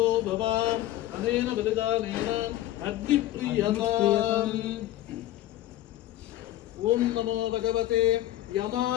भवान् अनेन बलिदानेन अग्निप्रियताम्। ओम नमो भगवते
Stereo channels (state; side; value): quieter; right; 14.3 dB